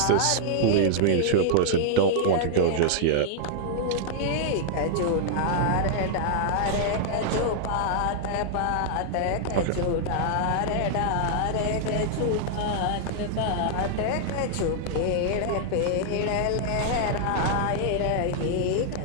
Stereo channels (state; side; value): different; both; correlation -0.01